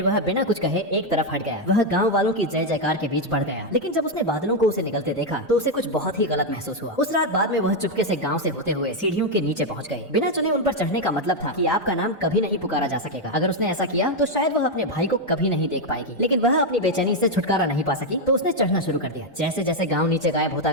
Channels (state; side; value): normal; both; correlation 0.03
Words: वह बिना कुछ कहे एक तरफ हट गया। वह गाँव वालों की जय जयकार के बीच बढ़ गया, लेकिन जब उसने बादलों को उसे निकलते देखा तो उसे कुछ बहुत ही गलत महसूस हुआ। उस रात बाद में वह चुपके से गाँव से होते हुए सीढ़ियों के नीचे पहुंच गए। बिना चुने उन पर चढ़ने का मतलब था कि आपका नाम कभी नहीं पुकारा जा सकेगा। अगर उसने ऐसा किया तो शायद वह अपने भाई को कभी नहीं देख पाएगी, लेकिन वह अपनी बेचैनी से छुटकारा नहीं पा सकी तो उसने चढ़ना शुरू कर दिया। जैसे जैसे गांव नीचे गायब होता